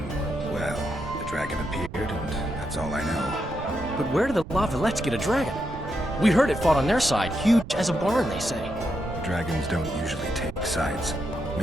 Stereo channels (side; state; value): right; noise; rumble, 12 dB below the sound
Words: well, the dragon appeared, and that's all I know. But where did the Lavalettes get a dragon? We heard it fought on their side, huge as a barn, they say. Dragons don't usually take sides.